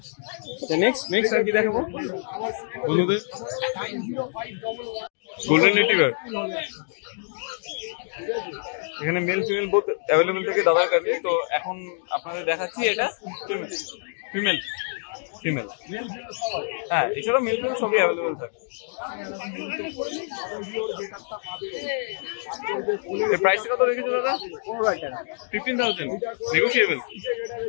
নেক্সট আর কি দেখাবো বন্ধুদের? গোল্ডেন রিট্রিভার, এখানে মেল ফিমেল বোথ অ্যাভেলেবল থাকে দাদার কাছে। তো এখন আপনাদের দেখাচ্ছি এটা ফিমেল, হ্যাঁ এছাড়াও মেল ফিমেল সবই অ্যাভেলেবল থাকে। প্রাইসটা কত রেখেছো দাদা? 15,000 নেগোশিয়েবল।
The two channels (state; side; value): silent; right; digital silence